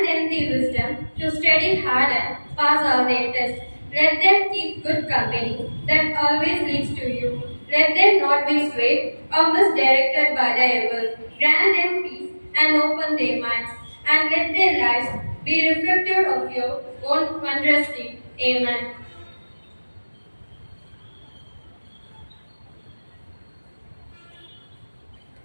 them the wisdom to study hard and pass all their tests. Let them keep good company that always leads to you. Let them not be swayed or misdirected by the evil. Grant them peace and open their minds, and let their lives be reflective of your own wondrous deed. Amen.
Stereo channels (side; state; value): both; inverted; correlation -1.00